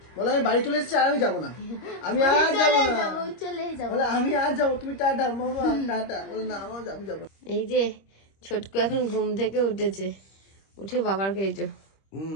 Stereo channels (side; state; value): right; late; 25 ms